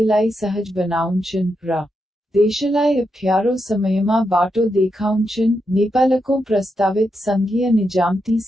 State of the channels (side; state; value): both; normal; correlation 0.84